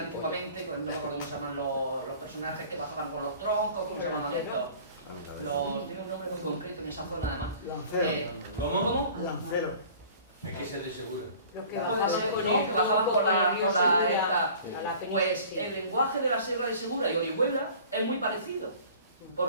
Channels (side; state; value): both; inverted; correlation -0.47